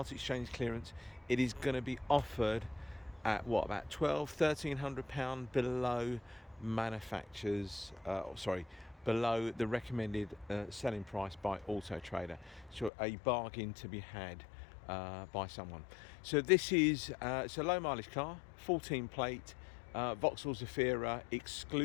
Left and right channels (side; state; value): right; drops out; at 12.9 s